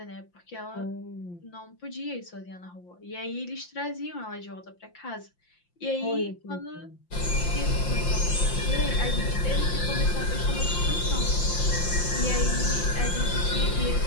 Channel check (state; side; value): late; right; 5.8 ms